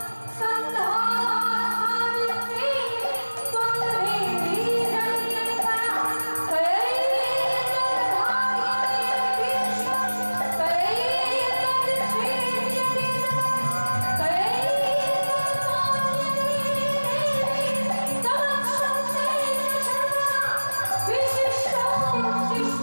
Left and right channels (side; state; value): both; inverted; correlation -1.00